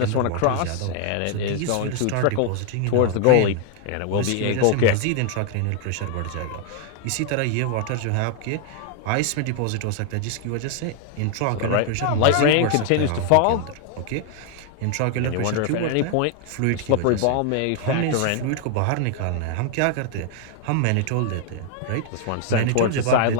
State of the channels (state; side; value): different; both; correlation 0.00